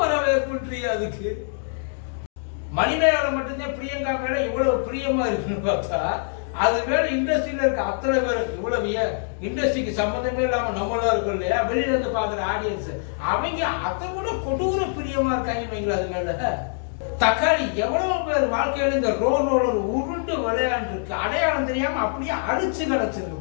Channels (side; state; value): right; silent; digital silence